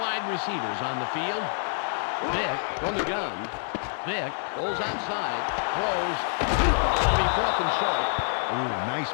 receivers on the field. Vick from the gun. Vick pulls outside, throws. It'll be 4th and short. Ooh, nice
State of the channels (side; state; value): right; silent; digital silence